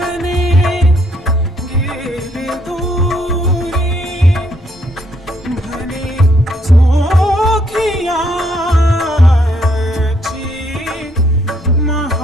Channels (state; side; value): normal; both; correlation 0.70